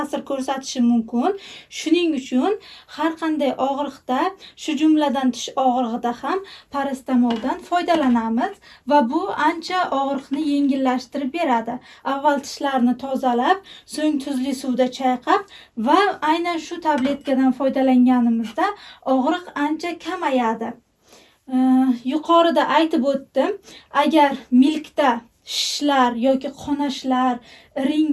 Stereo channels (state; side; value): identical; both; correlation 1.00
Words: ko'rsatishi mumkin. Shuning uchun har qanday og'riqda, shu jumladan tish og'rig'ida ham paracetamoldan foydalanamiz va bu ancha og'riqni yengillashtirib beradi. Avval tishlarni tozalab, so'ng tuzli suvda chayqab va aynan shu tabletkadan foydalanganimizda og'riq ancha kamayadi. Yuqorida aytib o'tdim, agar milkda shishlar yoki qonashlar,